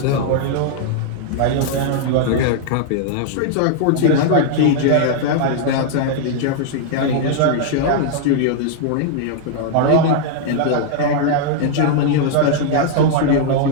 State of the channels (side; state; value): both; different; correlation -0.01